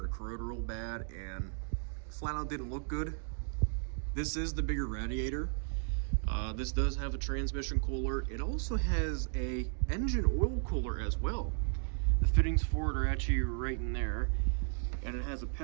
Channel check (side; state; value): left; silent; 55 dB below the other